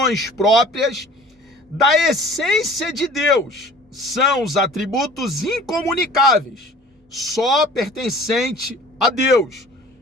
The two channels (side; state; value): both; normal; correlation 0.47